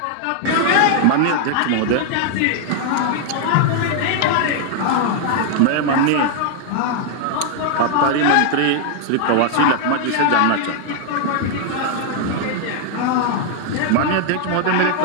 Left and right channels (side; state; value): both; different; correlation 0.00